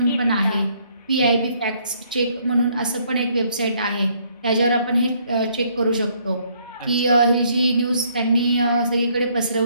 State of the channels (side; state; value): both; inverted; correlation -0.67